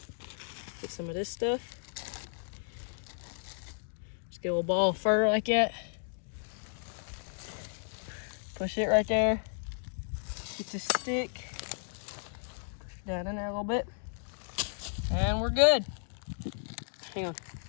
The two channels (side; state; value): right; silent; digital silence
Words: get some of this stuff. Just get a little ball of fur like that. Push it right there. Get the stick. Push it down in there a little bit. And we're good. Hang on.